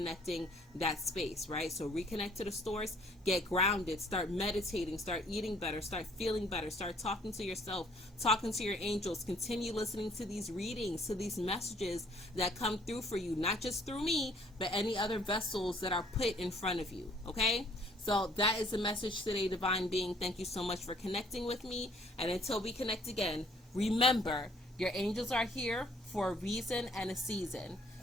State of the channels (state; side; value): normal; both; correlation 0.61